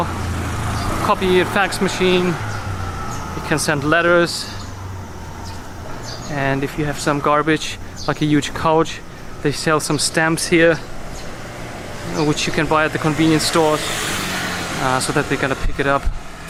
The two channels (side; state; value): both; identical; correlation 1.00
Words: copy fax machine. You can send letters, and if you have some garbage, like a huge couch, they sell some stamps here, which you can buy at the convenience stores, so that they're gonna pick it up.